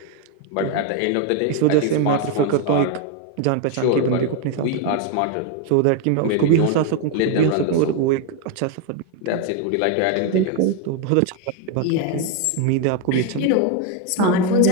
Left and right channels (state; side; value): different; both; correlation 0.01